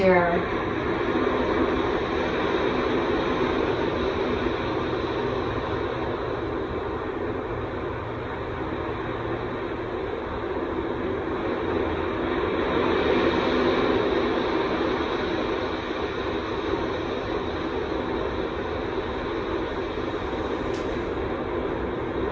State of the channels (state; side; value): identical; both; correlation 1.00